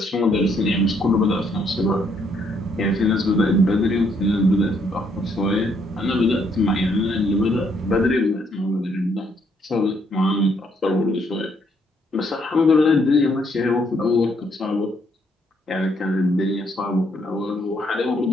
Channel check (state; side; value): normal; both; correlation 0.71